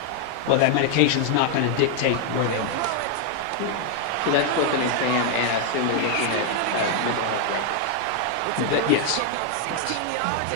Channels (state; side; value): different; both; correlation 0.00